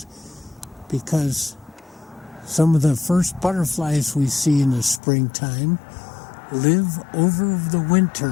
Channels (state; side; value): drops out; right; at 5.0 s